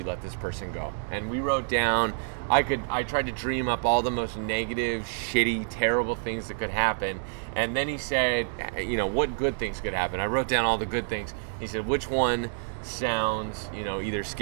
let this person go. And we wrote down, I tried to dream up all the most negative, shitty, terrible things that could happen. And then he said, what good things could happen? I wrote down all the good things. He said, which one sounds, either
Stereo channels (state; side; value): silent; left; digital silence